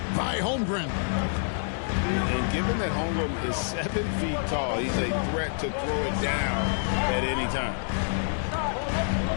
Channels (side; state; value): right; silent; digital silence